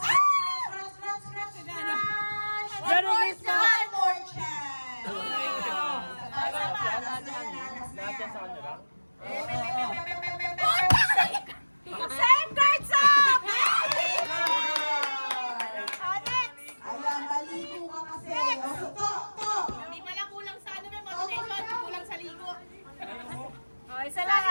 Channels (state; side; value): inverted; both; correlation -1.00